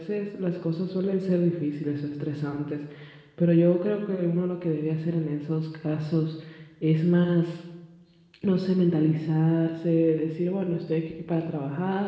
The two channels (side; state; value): both; identical; correlation 1.00